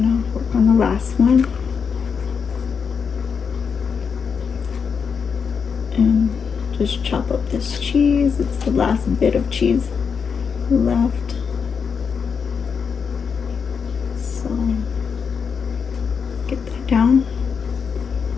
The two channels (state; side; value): quieter; right; 6.2 dB